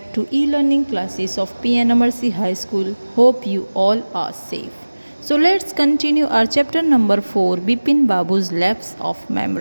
to e-learning classes of P.N.AMERSEY High School. Hope you all are safe. So let's continue our chapter number 4, Bipin Babu's Lapse of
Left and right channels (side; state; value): both; inverted; correlation -1.00